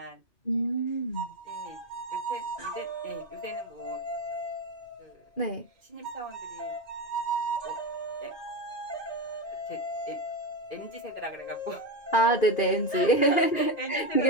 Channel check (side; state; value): right; late; 2.5 ms